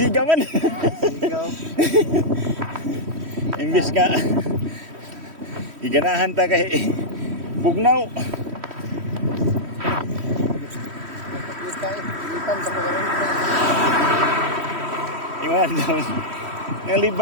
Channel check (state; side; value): late; left; 3.1 ms